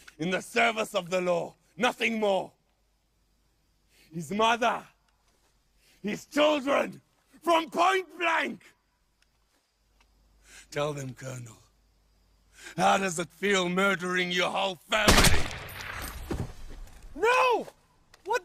in the service of the law. Nothing more. His mother. His children. From point blank. Tell them, Colonel. How does it feel murdering your whole family? No! What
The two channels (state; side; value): identical; both; correlation 1.00